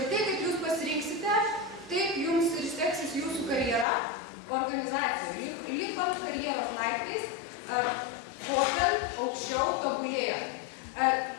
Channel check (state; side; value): drops out; right; at 3.9 s